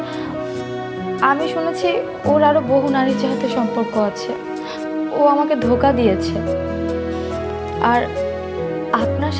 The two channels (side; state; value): both; identical; correlation 1.00